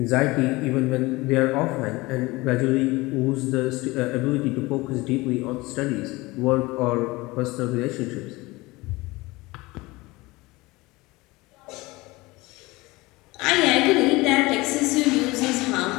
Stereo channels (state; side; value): quieter; right; 21.7 dB